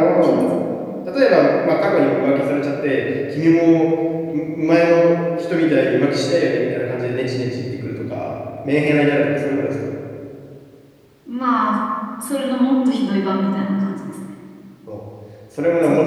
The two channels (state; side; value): identical; both; correlation 1.00